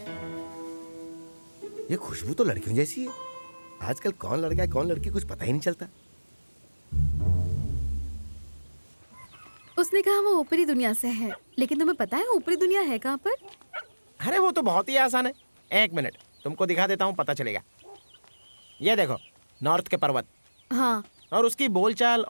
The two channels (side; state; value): both; inverted; correlation -1.00